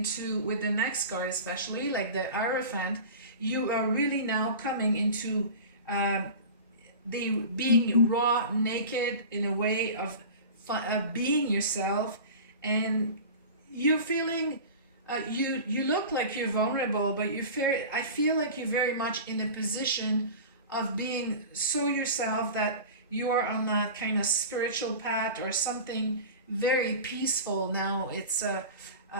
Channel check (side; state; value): both; inverted; correlation -0.34